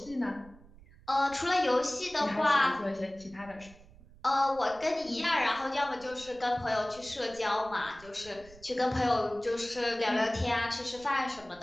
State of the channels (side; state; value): right; noise; rumble, 23 dB below the sound